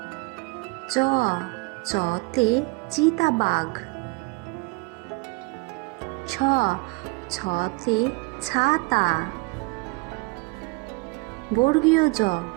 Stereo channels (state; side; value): quieter; left; 27.3 dB